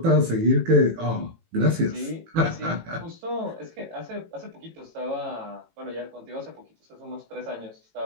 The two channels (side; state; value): left; late; 18 ms